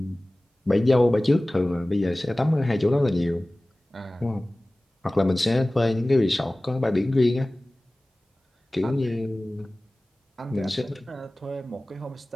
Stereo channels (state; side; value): normal; both; correlation 0.98